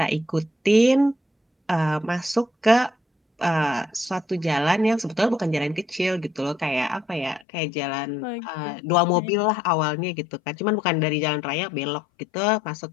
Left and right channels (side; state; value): right; drops out; at 7.5 s